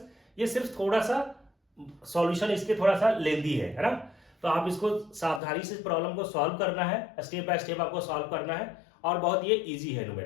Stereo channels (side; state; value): right; drops out; at 5.4 s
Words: ये सिर्फ थोड़ा सा सॉल्यूशन इसके थोड़ा सा लेंदी है ना, तो आप इसको सावधानी से प्रॉब्लम को सॉल्व करना है, स्टेप बाय स्टेप आपको सॉल्व करना है, और बहुत ये इजी है